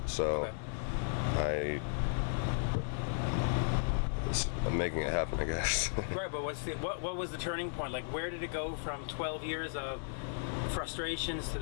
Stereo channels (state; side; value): silent; right; digital silence